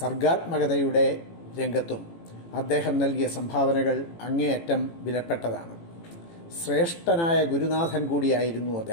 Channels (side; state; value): right; late; 18 ms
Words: രംഗത്തും അദ്ദേഹം നൽകിയ സംഭാവനകൾ അങ്ങേയറ്റം വിലപ്പെട്ടതാണ്. ശ്രേഷ്ഠനായ ഗുരുനാഥൻ കൂടിയായിരുന്നു